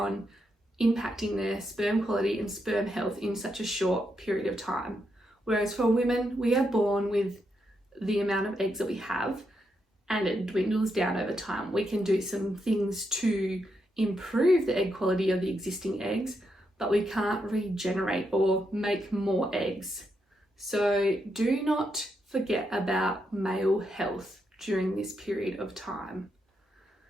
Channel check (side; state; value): both; normal; correlation 0.82